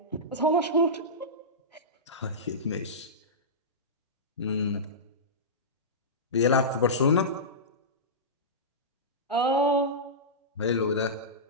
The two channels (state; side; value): normal; both; correlation -0.15